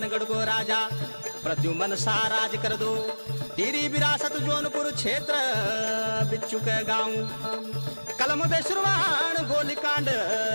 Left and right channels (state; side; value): inverted; both; correlation -1.00